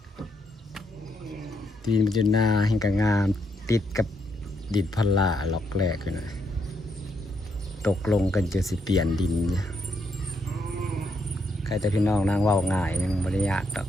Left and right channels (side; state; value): both; normal; correlation 0.77